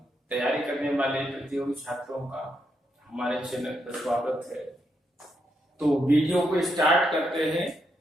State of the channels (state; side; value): normal; both; correlation 0.80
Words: तैयारी करने वाले प्रतियोगी छात्रों का हमारे चैनल पर स्वागत है। तो वीडियो को स्टार्ट करते हैं।